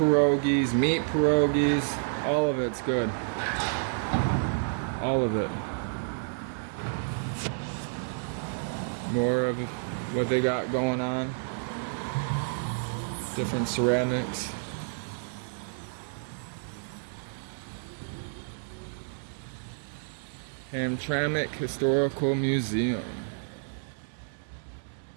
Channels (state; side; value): silent; left; digital silence